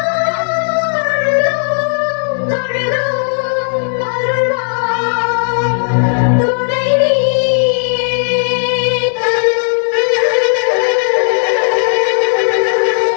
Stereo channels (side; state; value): right; silent; digital silence